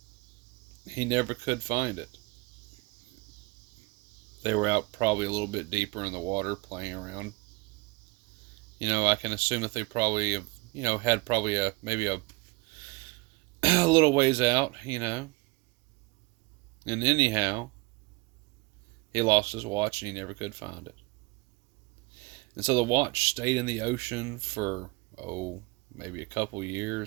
he never could find it. They were out probably a little bit deeper in the water playing around. I can assume that they probably have, had probably maybe a little ways out. And anyhow, he lost his watch and he never could find it. And so the watch stayed in the ocean for, maybe a couple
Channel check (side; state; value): left; quieter; 24.4 dB